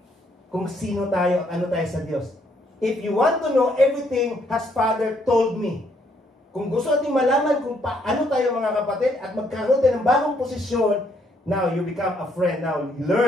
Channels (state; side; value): normal; both; correlation 0.70